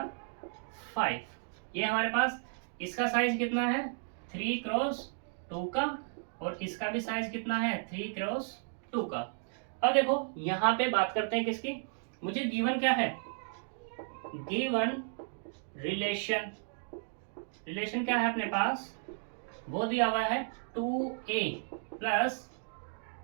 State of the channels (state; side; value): silent; left; 55 dB below the other